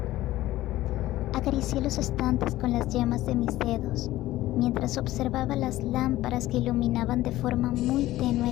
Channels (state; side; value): quieter; right; 15.8 dB